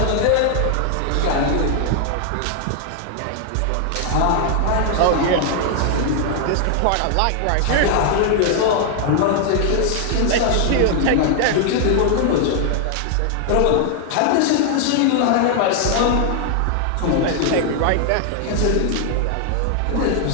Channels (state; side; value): different; both; correlation 0.00